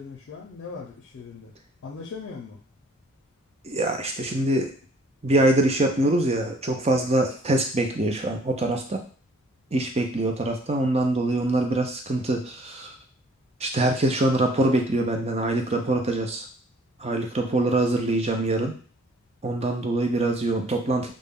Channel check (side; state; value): both; normal; correlation 0.57